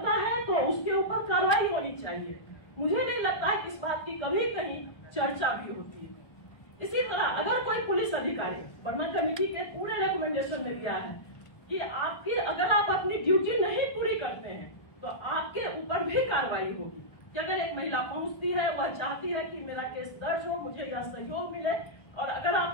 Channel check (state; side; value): late; right; 1.3 ms